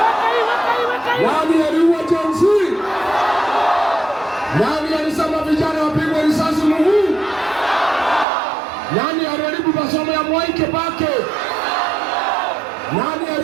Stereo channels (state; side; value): drops out; left; at 8.2 s